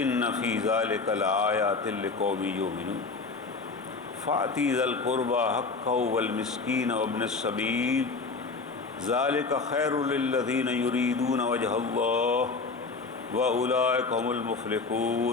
ان فی ذلک لآیات لقوم یؤمنون فآتی ذی القربى حقہ والمسکین وابن السبیل ذلک خیر للذین یریدون وجہ اللہ واولئک هم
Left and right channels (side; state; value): right; quieter; 4.2 dB